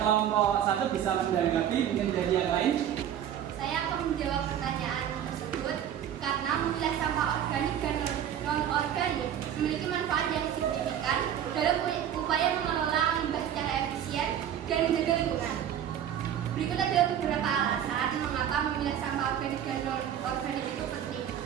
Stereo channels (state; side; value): quieter; left; 10.0 dB